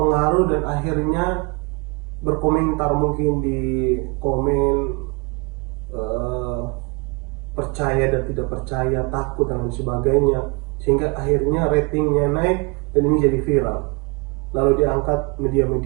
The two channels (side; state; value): left; quieter; 29.7 dB